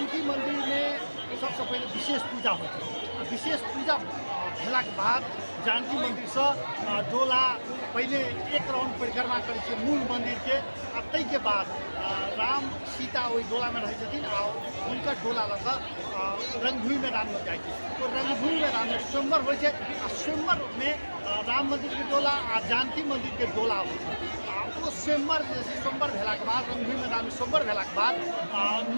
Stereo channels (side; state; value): both; inverted; correlation -1.00